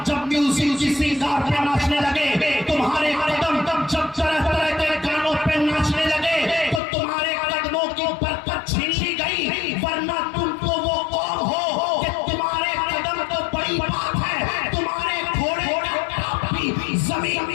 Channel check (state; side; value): drops out; right; at 6.8 s